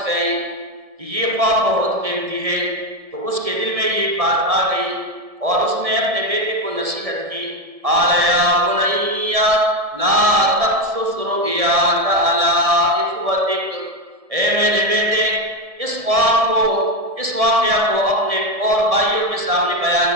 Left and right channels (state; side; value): late; left; 1.7 ms